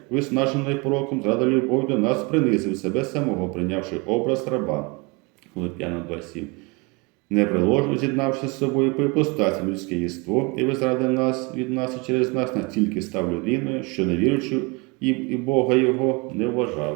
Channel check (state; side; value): quieter; left; 27.7 dB